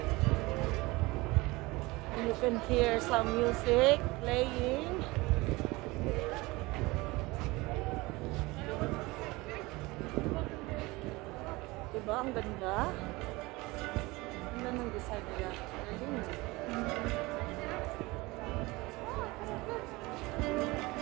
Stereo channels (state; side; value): quieter; left; 22.3 dB